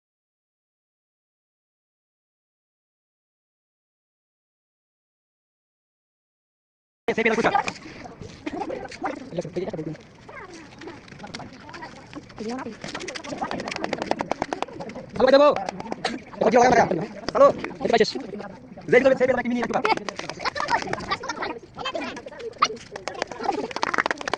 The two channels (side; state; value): both; identical; correlation 1.00